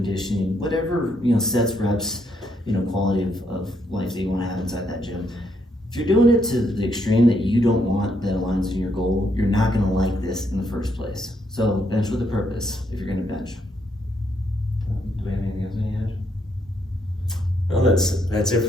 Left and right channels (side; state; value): both; normal; correlation 0.75